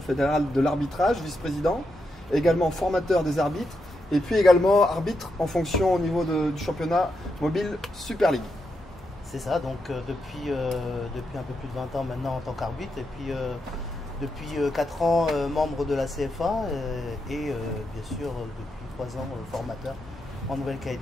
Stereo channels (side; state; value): both; normal; correlation 0.84